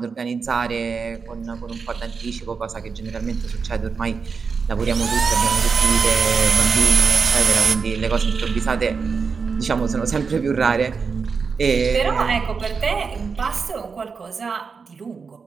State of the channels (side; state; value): left; quieter; 5.3 dB